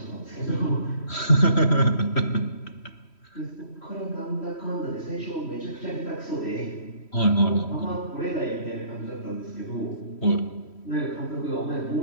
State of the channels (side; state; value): right; late; 3.1 ms